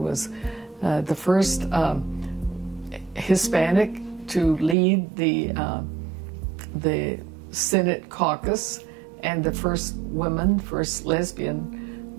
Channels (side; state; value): left; drops out; at 4.8 s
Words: the first Hispanic to lead the Senate caucus, and the first lesbian